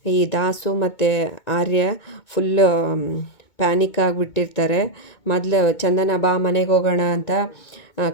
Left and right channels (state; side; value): late; right; 2.2 ms